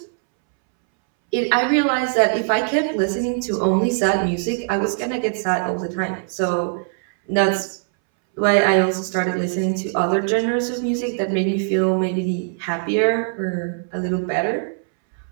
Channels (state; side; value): silent; left; 65 dB below the other